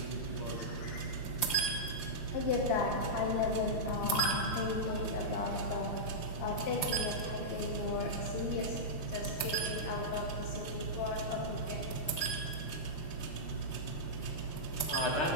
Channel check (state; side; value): late; right; 5.5 ms